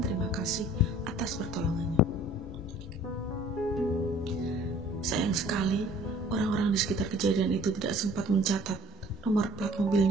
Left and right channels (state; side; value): normal; both; correlation 0.53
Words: kasih atas pertolongannya. Sayang sekali, orang-orang di sekitar kejadian itu tidak sempat mencatat nomor plat